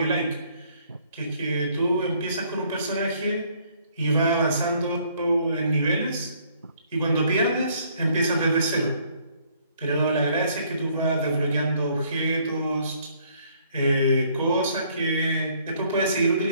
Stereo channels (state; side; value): inverted; both; correlation -0.64